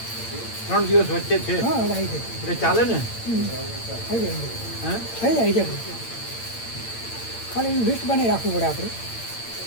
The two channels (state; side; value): late; right; 8.8 ms